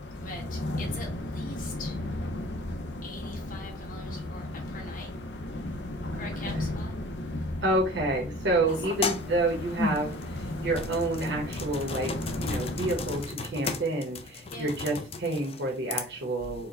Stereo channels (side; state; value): both; normal; correlation 0.46